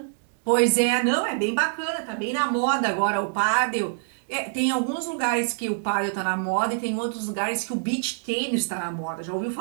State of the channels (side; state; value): left; silent; digital silence